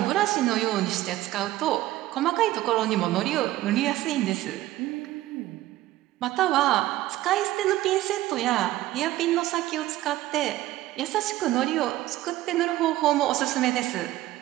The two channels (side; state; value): left; quieter; 15.7 dB